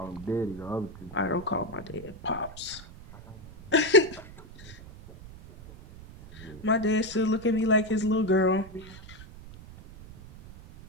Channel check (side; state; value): right; noise; rumble, 17 dB below the sound